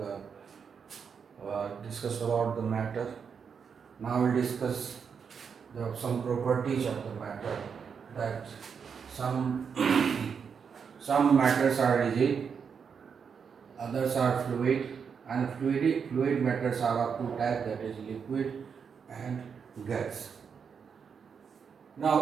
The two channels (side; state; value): left; quieter; 6.5 dB